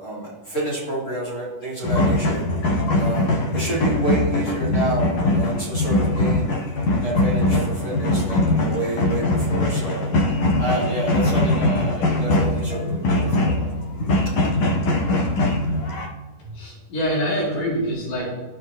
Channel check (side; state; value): right; late; 10 ms